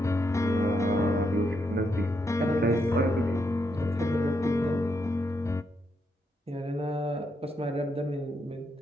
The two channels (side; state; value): both; normal; correlation 0.79